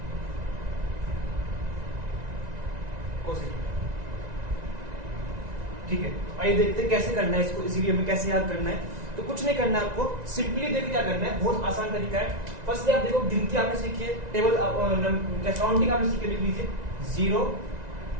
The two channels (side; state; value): left; late; 1.9 ms